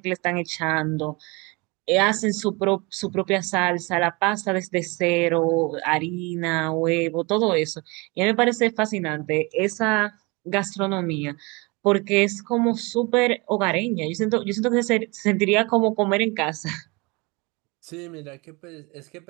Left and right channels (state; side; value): quieter; left; 27.1 dB